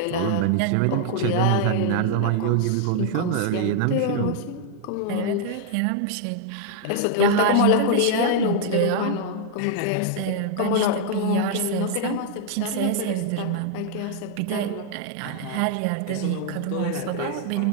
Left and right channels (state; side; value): different; both; correlation 0.00